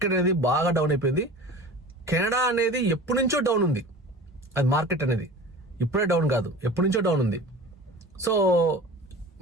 అనేది బాగా డౌన్ అయిపోయింది. కెనడా అనేది ఎప్పటి నుంచో డౌన్ ఉంది. అది మార్కెట్ అనేది ఇప్పుడే డౌన్ కాదు, ఎప్పటి నుంచో డౌన్ ఉంది. సో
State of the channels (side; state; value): both; normal; correlation 0.37